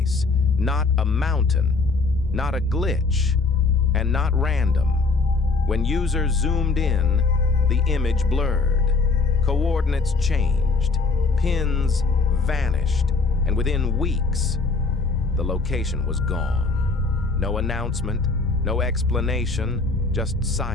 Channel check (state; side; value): quieter; right; 4.0 dB